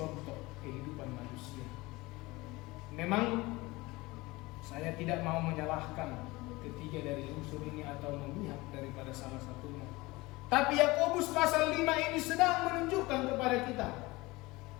kehidupan manusia. Memang saya tidak mau menyalahkan ketiga dari unsur ini atau memihak daripada salah satunya. Tapi Yakobus pasal 5 ini sedang menunjukkan kepada kita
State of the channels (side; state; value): right; quieter; 21.8 dB